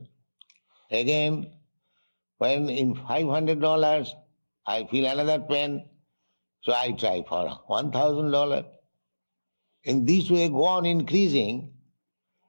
Again, when in $500 I feel another pain, so I try for $1,000. In this way go on increasing,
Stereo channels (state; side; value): inverted; both; correlation -1.00